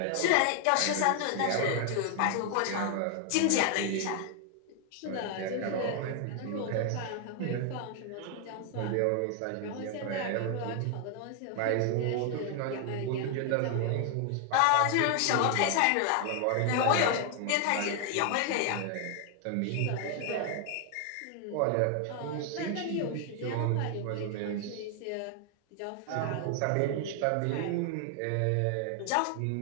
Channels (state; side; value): different; both; correlation 0.00